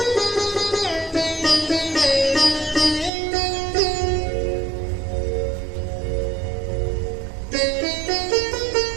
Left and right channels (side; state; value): left; drops out; at 3.1 s